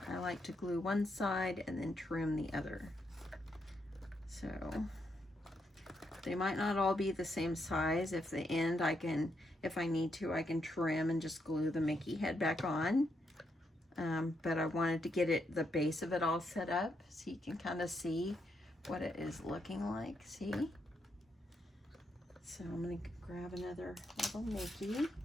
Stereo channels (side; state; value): both; normal; correlation 0.79